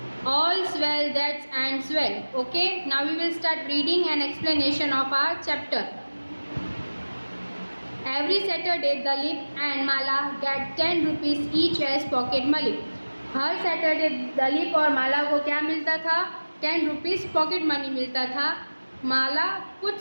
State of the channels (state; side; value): inverted; both; correlation -1.00